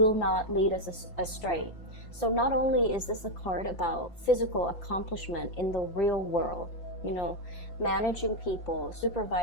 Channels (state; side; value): late; right; 5.7 ms